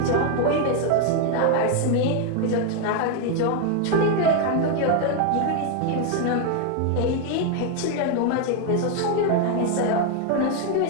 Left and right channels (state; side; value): different; both; correlation 0.01